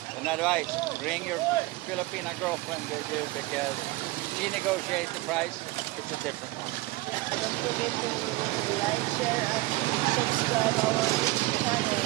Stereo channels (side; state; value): left; quieter; 19.7 dB